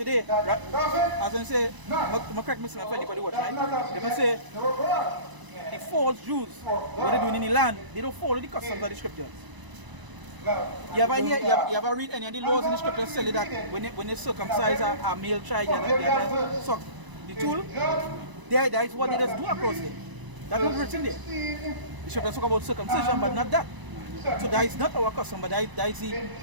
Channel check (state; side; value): late; left; 1.0 ms